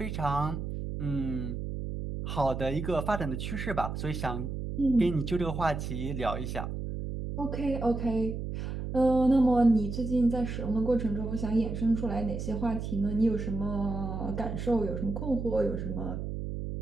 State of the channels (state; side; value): noise; right; hum, 5 dB below the sound